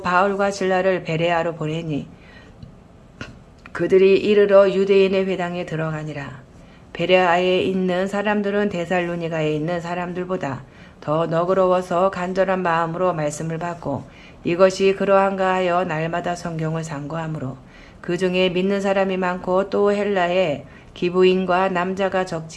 바울과 실라를 베레아로 보내니 그들이 이르러 유대인의 회당에 들어가니라. 베레아에 있는 사람들은 데살로니가에 있는 사람들보다 더 너그러워서 간절한 마음으로 말씀을 받고 이것이 그러한가 하여 날마다 성경을 상고하므로 그 중에 믿는 사람이 많고 또 헬라에 기부인과 남자가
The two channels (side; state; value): both; identical; correlation 1.00